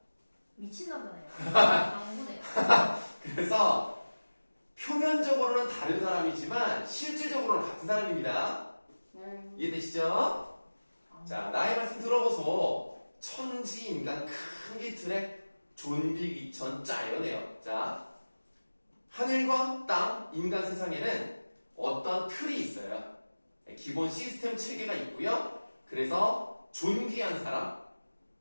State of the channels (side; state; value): both; inverted; correlation -1.00